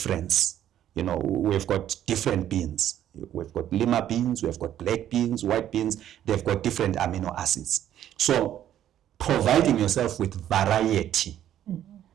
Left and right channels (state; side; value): quieter; left; 11.3 dB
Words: We've got different beans. We've got lima beans, we've got black beans, white beans. They've got different amino acids. So providing yourself with variety